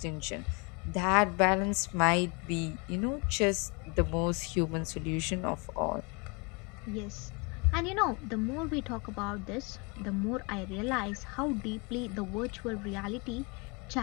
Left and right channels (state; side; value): quieter; right; 31.4 dB